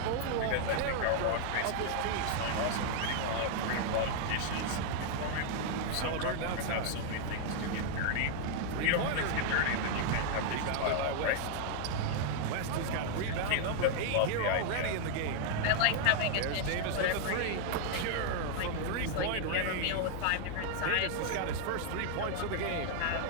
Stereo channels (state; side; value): different; both; correlation 0.00